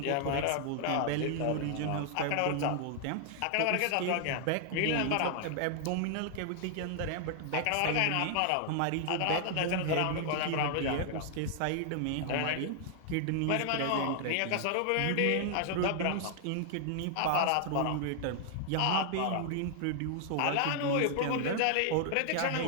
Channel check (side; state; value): both; different; correlation 0.00